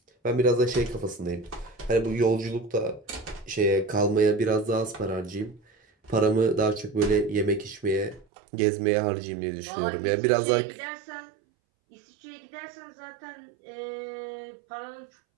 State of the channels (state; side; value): drops out; left; at 8.2 s